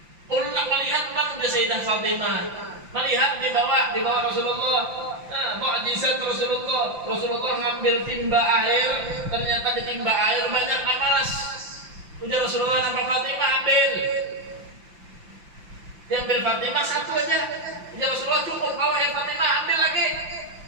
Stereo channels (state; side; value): late; left; 5.8 ms